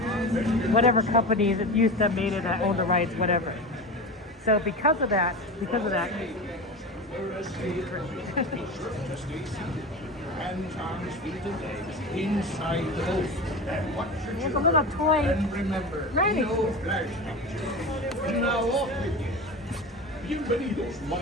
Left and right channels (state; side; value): normal; both; correlation 0.27